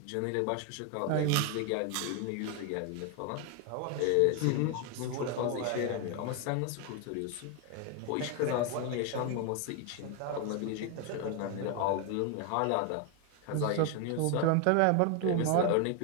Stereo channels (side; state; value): both; different; correlation 0.01